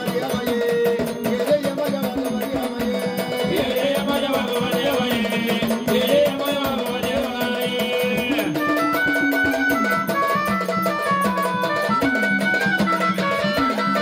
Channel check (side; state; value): both; identical; correlation 1.00